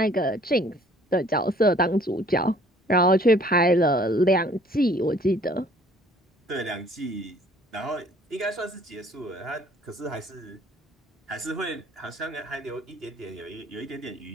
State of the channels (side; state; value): both; normal; correlation 0.56